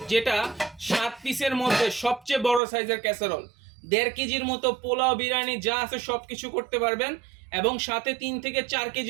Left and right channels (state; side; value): drops out; left; at 2.6 s